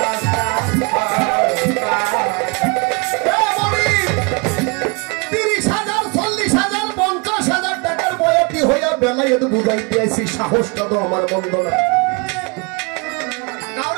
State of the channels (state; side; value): quieter; left; 30.2 dB